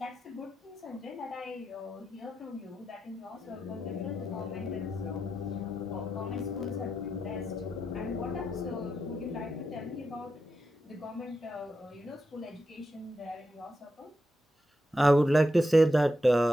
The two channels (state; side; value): normal; both; correlation 0.86